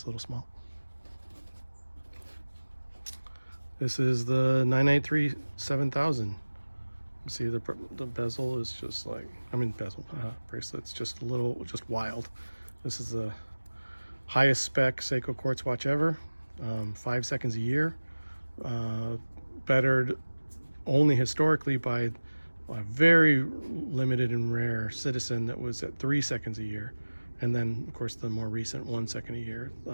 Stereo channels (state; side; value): inverted; both; correlation -1.00